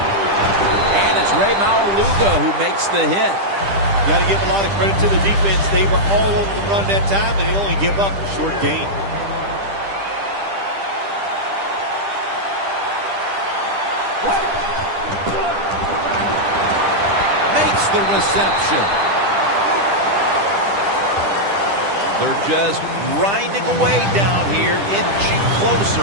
And it's Ray Maualuga who makes the hit. Got to give a lot of credit to the defense. They were all over the run that time, and they only give up a short gain. Makes the reception. They're just grinding away down here, inching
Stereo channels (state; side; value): late; left; 10 ms